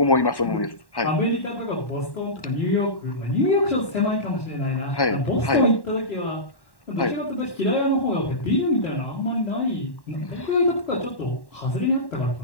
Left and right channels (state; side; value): late; right; 1.1 ms